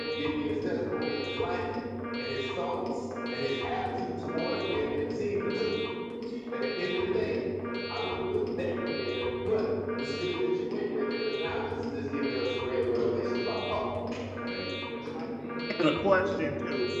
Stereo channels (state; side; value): identical; both; correlation 1.00